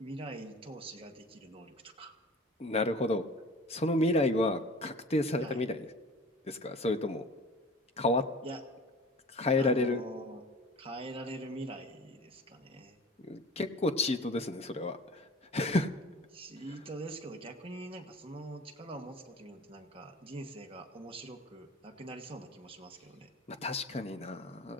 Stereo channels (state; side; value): normal; both; correlation 0.41